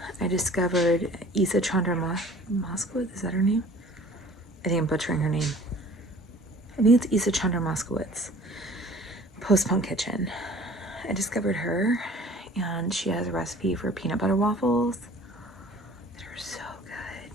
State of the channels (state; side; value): normal; both; correlation 0.49